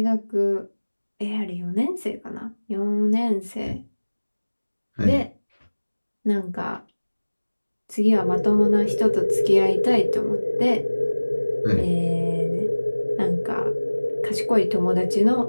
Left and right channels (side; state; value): both; inverted; correlation -1.00